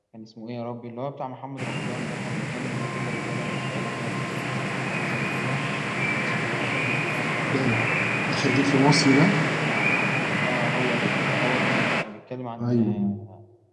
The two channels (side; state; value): both; identical; correlation 1.00